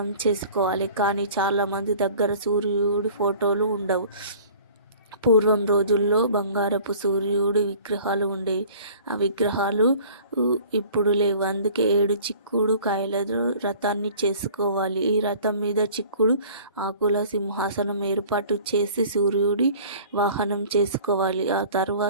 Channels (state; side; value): inverted; both; correlation -0.48